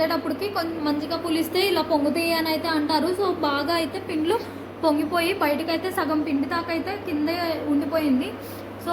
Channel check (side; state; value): both; identical; correlation 1.00